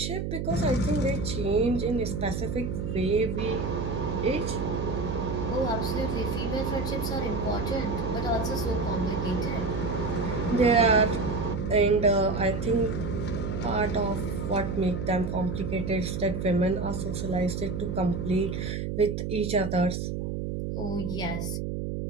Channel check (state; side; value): noise; right; hum, 3 dB below the sound